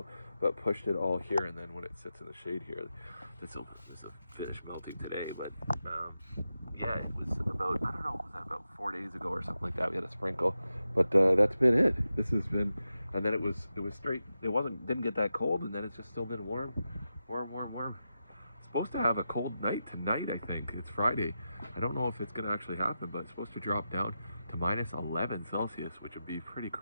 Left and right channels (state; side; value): inverted; both; correlation -0.90